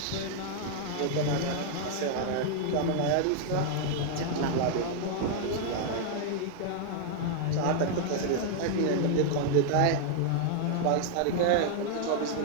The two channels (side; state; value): both; different; correlation 0.00